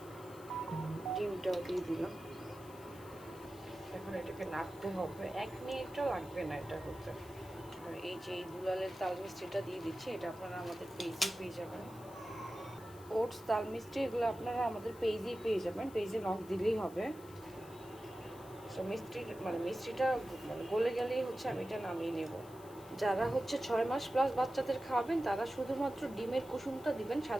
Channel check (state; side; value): noise; left; hiss, 22 dB below the sound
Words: ডিমটাও দিয়ে দিলাম। এখন এটাকে নাড়তে হবে, 1 মিনিটও লাগবে না এটা হতে। আর এই যে এই দুলালের তাল মিষ্টিটা দিয়ে দিচ্ছি, এটা আপনারা আমাদের পেজেই পেয়ে যাবেন। ওটস তাল মিষ্টি এগুলো আপনারা আমাদের পেজেই পেয়ে যাবেন, পেজে নক দিলেই হবে। সো মিষ্টিটা গলে গেলেই হচ্ছে আমি এটা নামিয়ে নেব। যারা হচ্ছে 6 মাস প্লাস বাচ্চাদের খাওয়াবেন তারা শুধুমাত্র ডিমের কুসুমটা দিবেন,